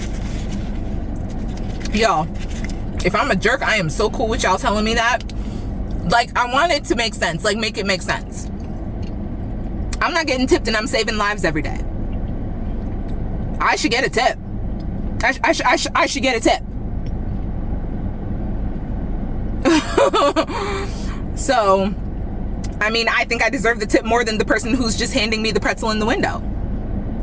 Yo, if I'm a jerk, I am so cool with y'all telling me that. Like, I want it to make sense. Like, make it make sense. I'm not getting tipped and I'm saving lives every day. I should get a tip. I should get a tip. So, I mean, I think I deserve the tip more than the person who's just handing me the pretzel in the window.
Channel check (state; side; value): identical; both; correlation 1.00